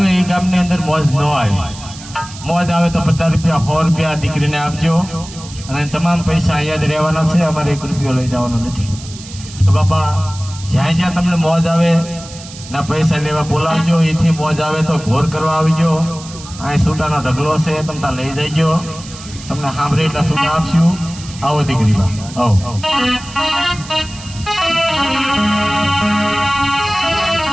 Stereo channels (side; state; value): right; noise; hiss, 16 dB below the sound